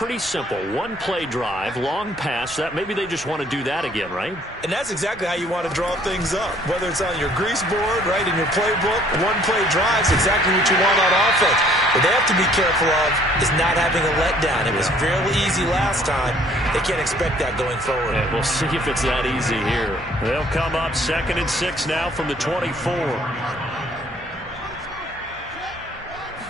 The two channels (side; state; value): both; normal; correlation 0.59